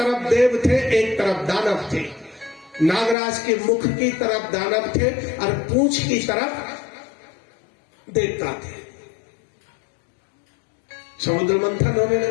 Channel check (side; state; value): right; drops out; at 3.2 s